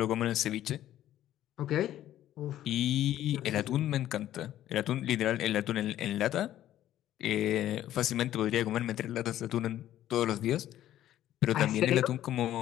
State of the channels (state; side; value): quieter; right; 12.7 dB